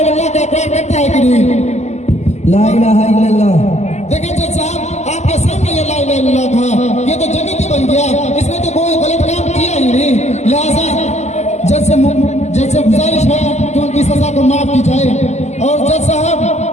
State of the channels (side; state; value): right; late; 0.33 ms